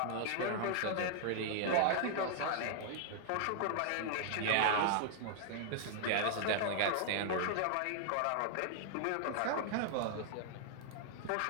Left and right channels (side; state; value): both; different; correlation 0.00